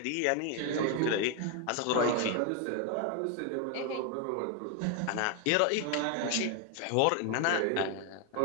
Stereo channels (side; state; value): both; different; correlation 0.01